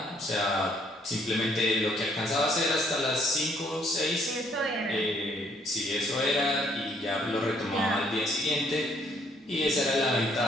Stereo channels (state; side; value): normal; both; correlation 0.66